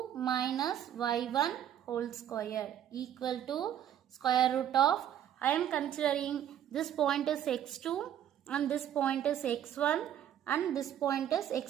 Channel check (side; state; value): left; quieter; 10.5 dB